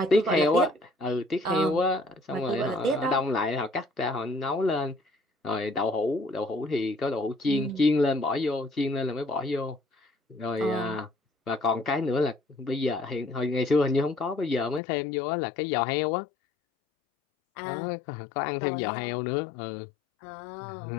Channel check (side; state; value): right; drops out; at 14.8 s